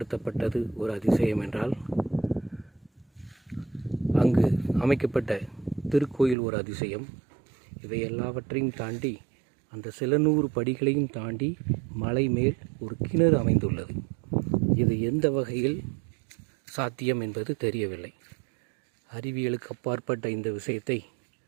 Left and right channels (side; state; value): left; drops out; at 6.4 s